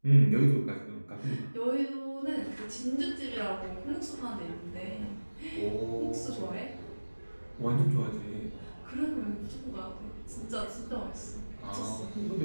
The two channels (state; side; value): inverted; both; correlation -1.00